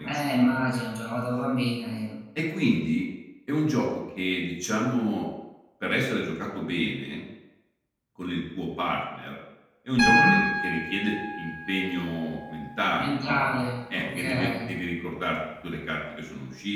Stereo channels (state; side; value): identical; both; correlation 1.00